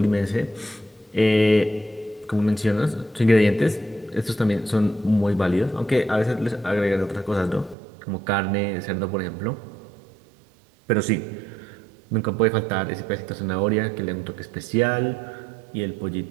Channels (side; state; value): left; drops out; at 7.8 s